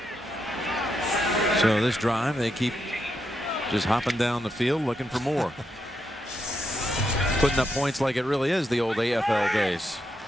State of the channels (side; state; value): both; normal; correlation 0.82